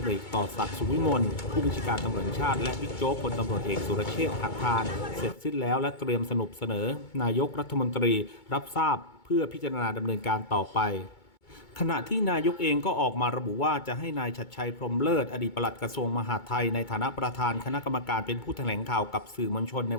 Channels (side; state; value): right; late; 2.2 ms